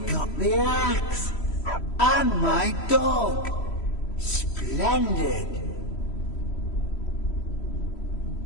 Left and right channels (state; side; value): late; right; 3.1 ms